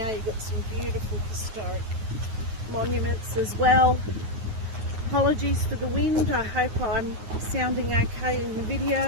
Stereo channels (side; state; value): left; late; 9.5 ms